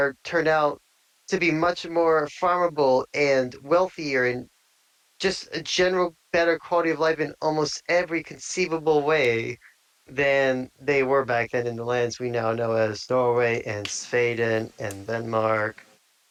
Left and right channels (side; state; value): both; identical; correlation 1.00